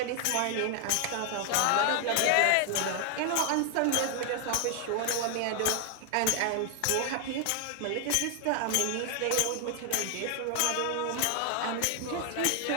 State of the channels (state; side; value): different; both; correlation 0.00